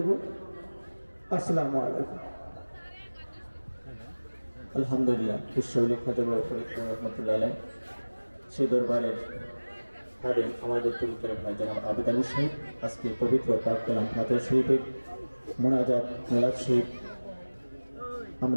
আসসালামু আলাইকুম। আলহামদুলিল্লাহ, বিশ্ববিলেখ রহমতুল্লাহ আলাইহি সেই দরবারের খাদেম আমাদের পবিত্র ভাই জনাব আবেদ আলী সাহেব আজকে পবিত্র পাক কালাম ফাতিহা শরীফের মোনাজাত মিলাদ শরীফ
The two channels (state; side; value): inverted; both; correlation -1.00